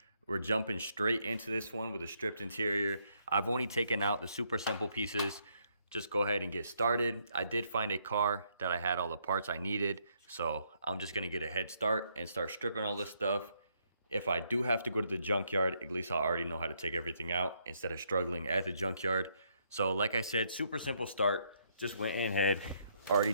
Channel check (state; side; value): inverted; both; correlation -0.73